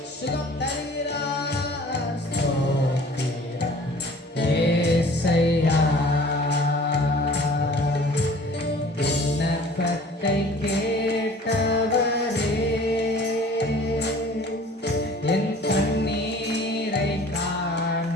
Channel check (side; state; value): both; normal; correlation 0.48